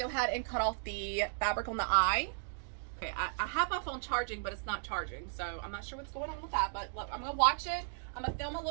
ahead and cut off the fabric on the eye. Okay, I have my phone charging, but it's not charging, so I'm not sure what's going on with that, but look, I'm gonna watch it. I'm gonna film a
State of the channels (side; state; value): left; silent; digital silence